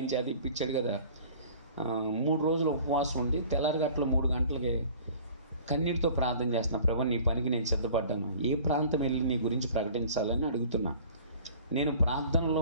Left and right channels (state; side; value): inverted; both; correlation -0.47